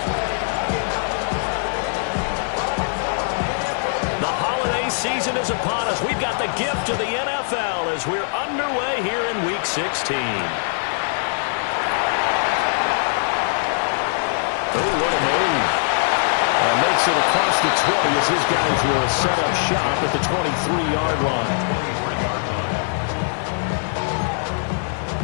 Season is upon us. We've got the gift of the NFL as we're underway here in Week 16. Oh, what a move. And makes it across the 20 as his guys will set up shop at the 23-yard line.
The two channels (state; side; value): silent; right; 58 dB below the other